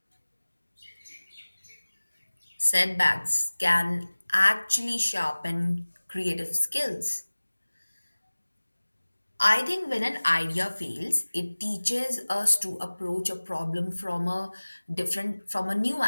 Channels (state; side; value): inverted; both; correlation -1.00